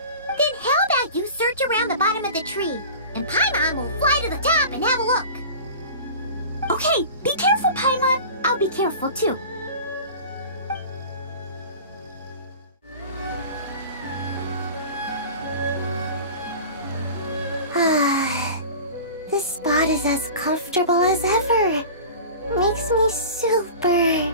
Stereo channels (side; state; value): both; inverted; correlation -0.36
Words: Then how about you search around the bottom of the tree, and Paimon will fly to the top and have a look. Okay, be careful, Paimon. I'll be careful too. This spot is as comfortable as ever. Makes me super